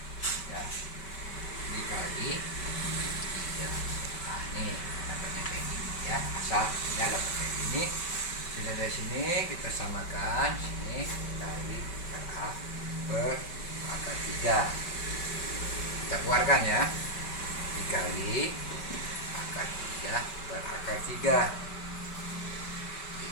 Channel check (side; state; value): right; late; 5.2 ms